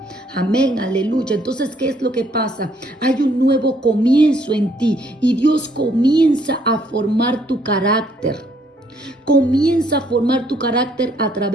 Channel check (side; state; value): both; normal; correlation 0.67